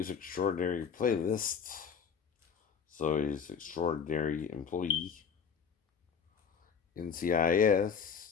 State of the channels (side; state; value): right; quieter; 6.8 dB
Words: Extraordinary Playlist, Zoe's Extraordinary Employee,